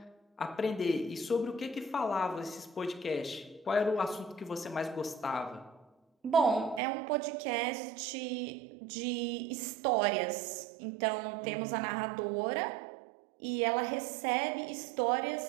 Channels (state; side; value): drops out; left; at 6.8 s